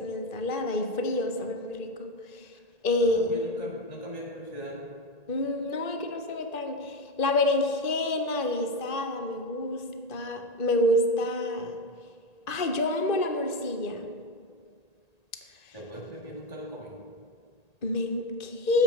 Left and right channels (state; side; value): late; right; 1.9 ms